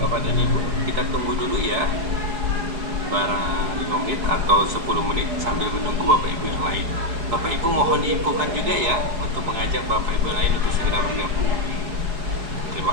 bapak dan ibu, kita tunggu dulu ya, barang 5 menit atau 10 menit sambil menunggu bapak ibu yang lain. Bapak ibu mohon diinfokan juga ya untuk mengajak bapak ibu lain untuk segera bergabung.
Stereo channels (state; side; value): late; left; 4.8 ms